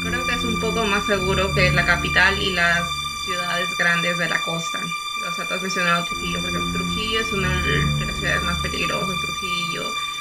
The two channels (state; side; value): identical; both; correlation 1.00